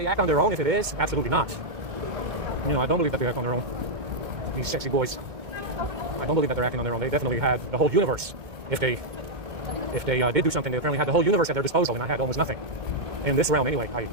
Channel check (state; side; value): late; left; 2.2 ms